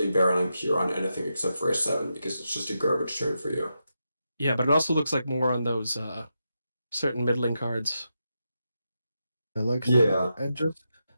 barreling pure on anything except for a 7 because it's just a garbage turn for you. Yeah, but it also looks like more on those certain middling cards. I like Yeah.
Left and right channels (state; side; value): inverted; both; correlation -0.87